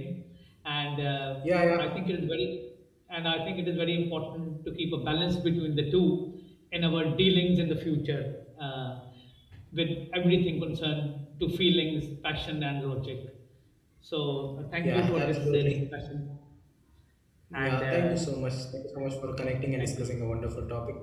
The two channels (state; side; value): identical; both; correlation 1.00